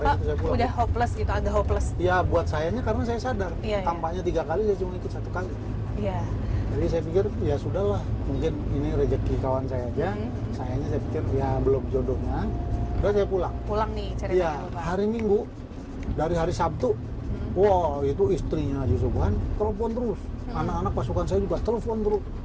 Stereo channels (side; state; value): both; identical; correlation 1.00